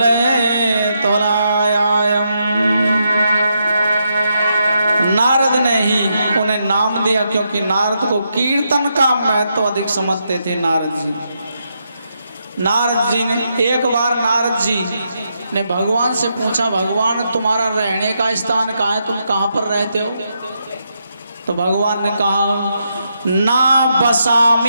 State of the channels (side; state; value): both; inverted; correlation -0.81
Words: नारद ने ही उन्हें नाम दिया क्योंकि नारद को कीर्तन का महत्व अधिक समझते थे। नारद जी ने एक बार नारद जी ने भगवान से पूछा भगवान तुम्हारा रहने का स्थान कहाँ है, तुम कहाँ पर रहते हो? तो भगवान ने कहा ना